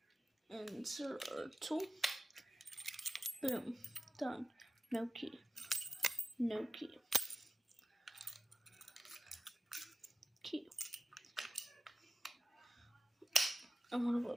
insert our tool. Boom. Done. No key. No key. Key. I wonder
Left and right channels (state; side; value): normal; both; correlation 0.93